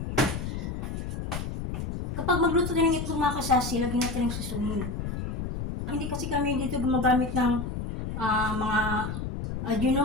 Kapag magluto din ng itlog mga kasasi, lagyan natin ng susunin. Hindi kasi kami dito gumagamit ng mga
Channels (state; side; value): noise; left; rumble, 4 dB below the sound